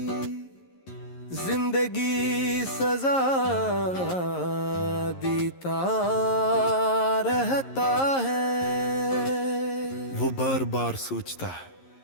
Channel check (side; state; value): right; late; 11 ms